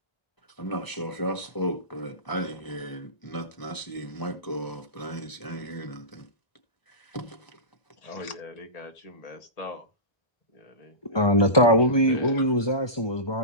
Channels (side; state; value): right; late; 1.0 ms